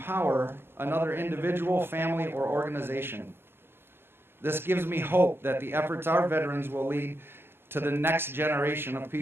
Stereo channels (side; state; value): left; late; 0.11 ms